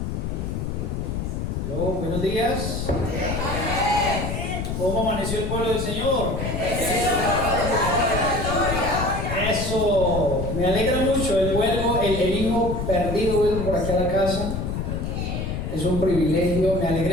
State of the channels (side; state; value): left; noise; rumble, 3 dB below the sound